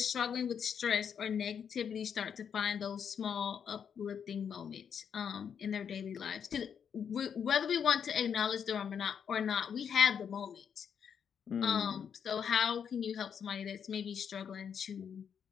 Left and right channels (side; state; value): right; quieter; 7.6 dB